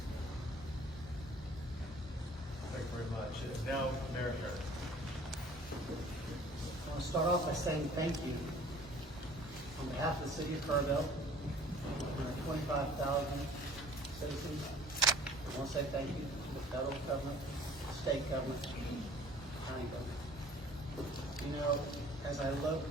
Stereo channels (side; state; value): both; normal; correlation 0.51